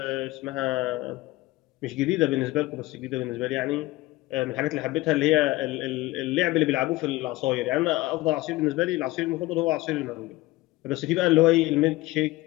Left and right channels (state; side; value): quieter; right; 19.0 dB